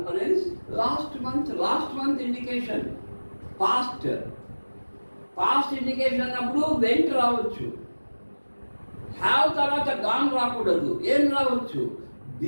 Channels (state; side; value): inverted; both; correlation -1.00